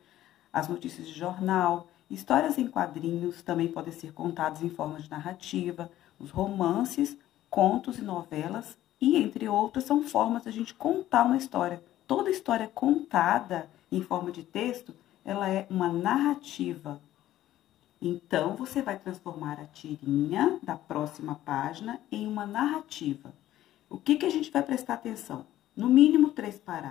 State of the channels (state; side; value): quieter; right; 13.6 dB